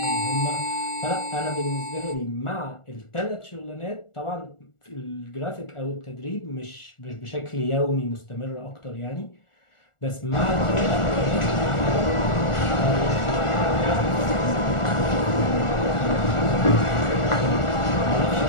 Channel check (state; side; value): late; right; 1.4 ms